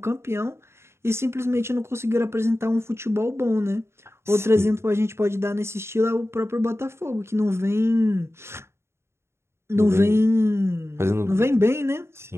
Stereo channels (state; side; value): late; left; 0.13 ms